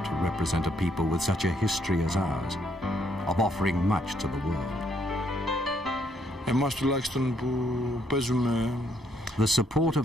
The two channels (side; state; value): both; normal; correlation 0.71